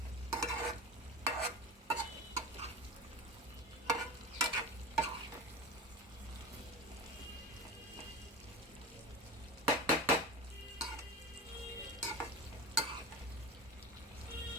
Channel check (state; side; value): normal; both; correlation 0.27